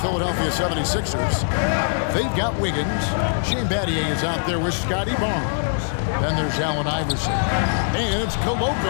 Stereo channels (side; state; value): right; silent; 59 dB below the other